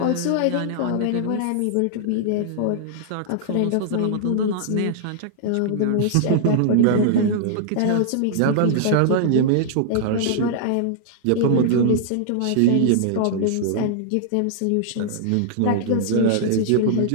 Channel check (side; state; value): both; different; correlation -0.01